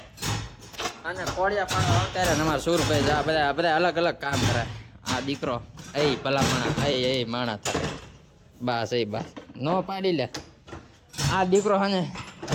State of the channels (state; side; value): identical; both; correlation 1.00